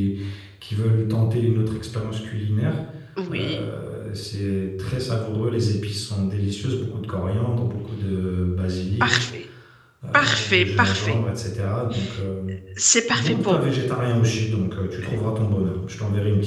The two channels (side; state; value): both; identical; correlation 1.00